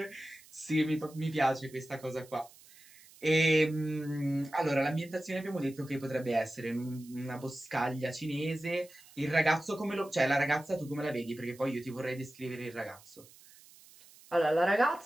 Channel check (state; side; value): noise; right; hiss, 23 dB below the sound